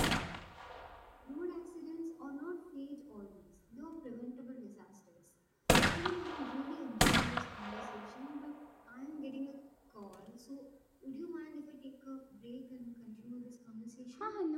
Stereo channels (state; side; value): identical; both; correlation 1.00